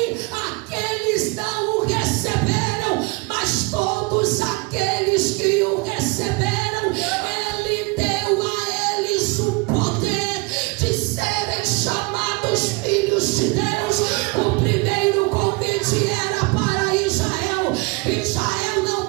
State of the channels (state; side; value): quieter; left; 27.6 dB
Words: aqueles não o receberam, mas todos aqueles que o receberam, ele deu a eles o poder de serem chamados filhos de Deus. O primeiro convite era para Israel. Israel não